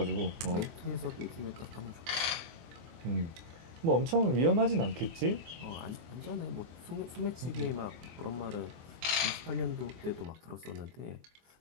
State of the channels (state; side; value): late; left; 24 ms